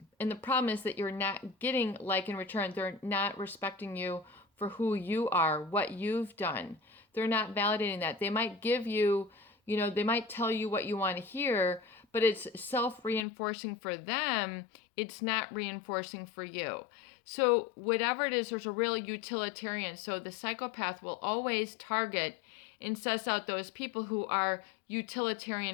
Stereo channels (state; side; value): drops out; right; at 13.2 s